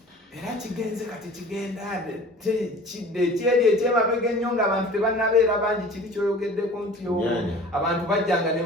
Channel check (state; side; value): normal; both; correlation 0.44